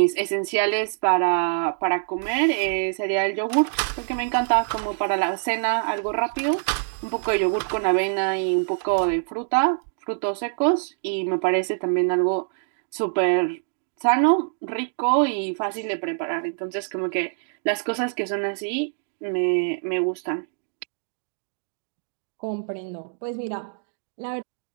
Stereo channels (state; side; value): silent; left; digital silence